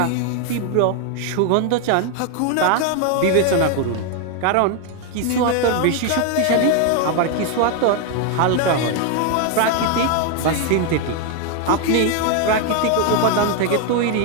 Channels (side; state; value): both; different; correlation 0.01